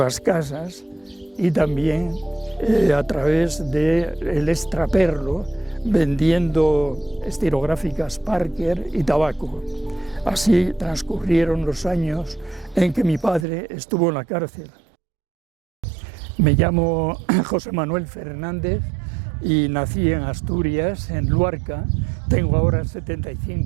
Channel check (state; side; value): drops out; left; at 13.5 s